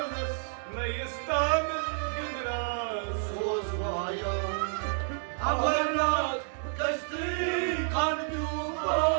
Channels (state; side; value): silent; left; digital silence